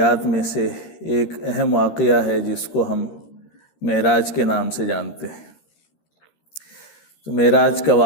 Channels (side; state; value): right; late; 13 ms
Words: میں سے ایک اہم واقعہ ہے جس کو ہم معراج کے نام سے جانتے ہیں. تو معراج کا